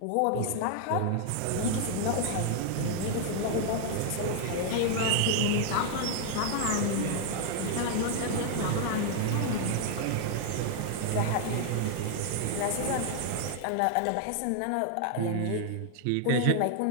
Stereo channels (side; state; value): both; different; correlation 0.00